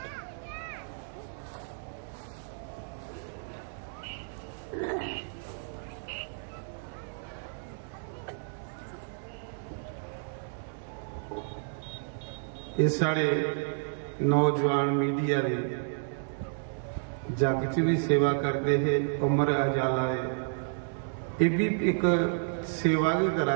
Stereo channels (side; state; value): left; silent; 57 dB below the other